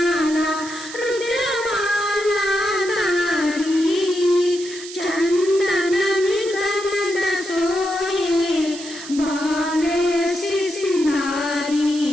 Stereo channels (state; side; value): noise; right; hiss, 12 dB below the sound